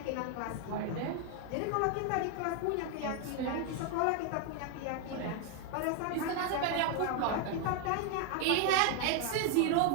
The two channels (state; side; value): different; both; correlation 0.01